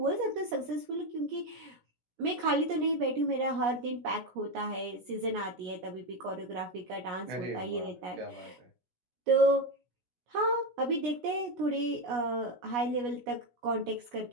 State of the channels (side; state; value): left; late; 17 ms